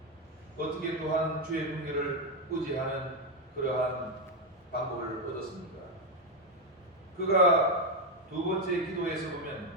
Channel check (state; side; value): normal; both; correlation 0.06